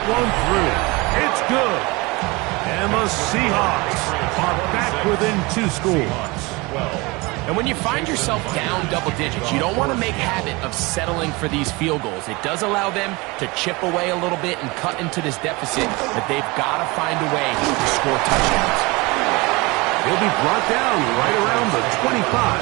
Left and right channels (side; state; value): left; quieter; 24.7 dB